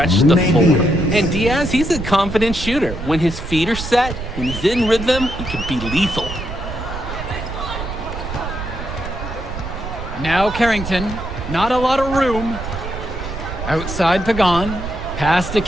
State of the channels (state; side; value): noise; right; rumble, 8 dB below the sound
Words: the floor. And Diaz, he's a confident shooter. When his feet are set, when he's in rhythm, he can be lethal. Now Carrington, not a lot of room. Outside Pagan, pass to